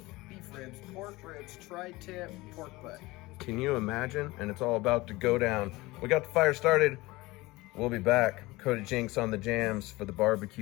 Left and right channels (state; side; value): quieter; right; 20.8 dB